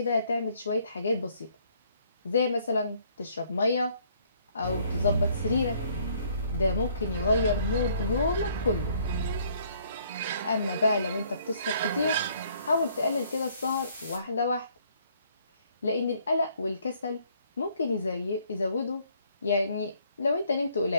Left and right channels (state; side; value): inverted; both; correlation -0.64